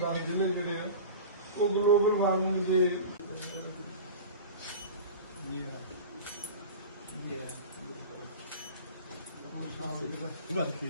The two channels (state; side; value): inverted; both; correlation -0.33